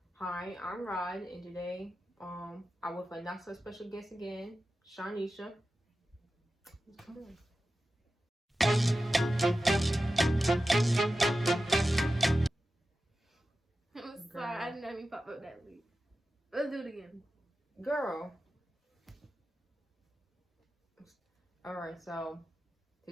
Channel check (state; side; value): normal; both; correlation 0.93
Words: Hi, I'm Rod, and today I'm with a not so special guest again, Shanisha. Come on. I'm sorry, I didn't even pop up that week. Let's do it again. Girl. Alright, so